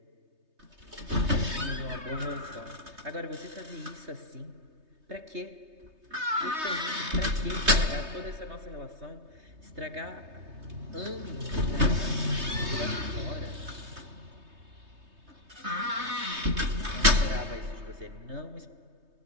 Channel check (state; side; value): late; left; 3.2 ms